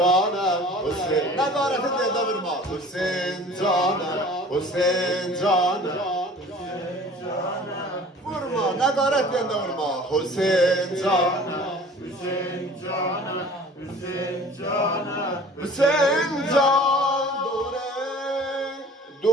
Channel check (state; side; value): normal; both; correlation 0.46